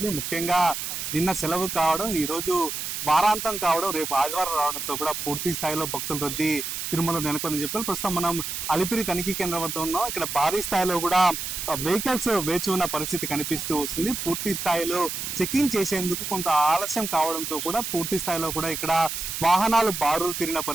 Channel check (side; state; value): right; noise; hiss, 4 dB below the sound